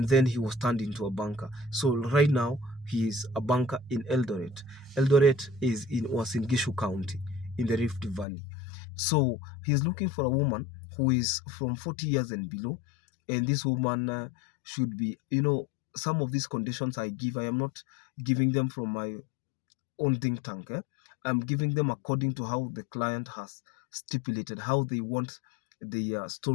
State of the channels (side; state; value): right; drops out; at 8.2 s